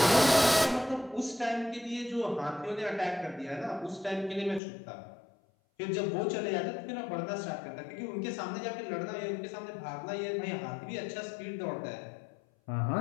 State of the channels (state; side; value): drops out; right; at 4.6 s